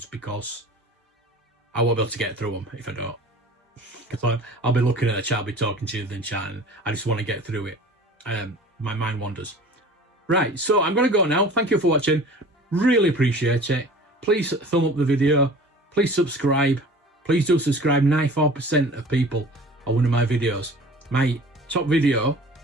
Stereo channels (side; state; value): both; normal; correlation 0.43